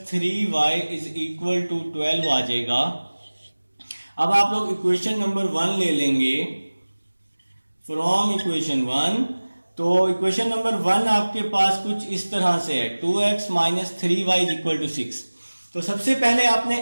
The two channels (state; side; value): inverted; both; correlation -1.00